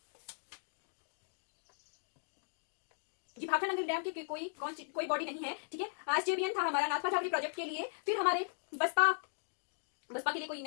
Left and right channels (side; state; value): right; silent; digital silence